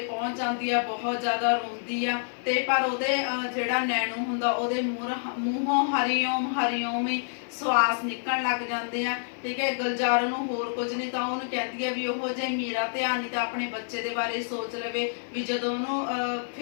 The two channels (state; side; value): silent; right; digital silence